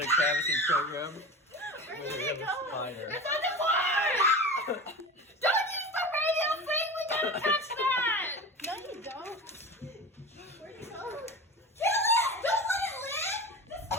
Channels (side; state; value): both; normal; correlation 0.31